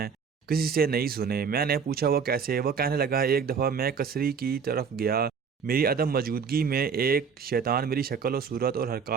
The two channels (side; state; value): left; quieter; 6.2 dB